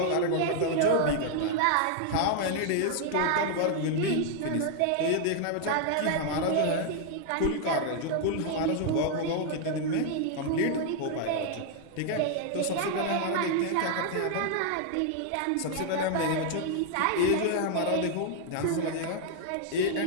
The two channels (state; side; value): different; both; correlation 0.00